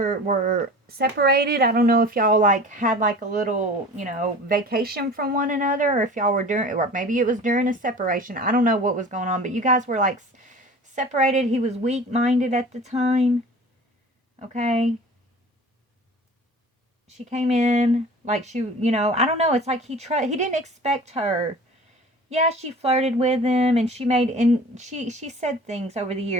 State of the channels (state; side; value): normal; both; correlation 0.41